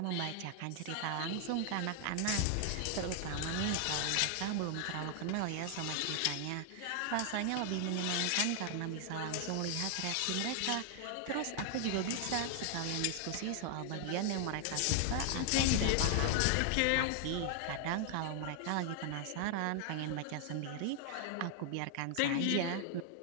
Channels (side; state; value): both; different; correlation 0.00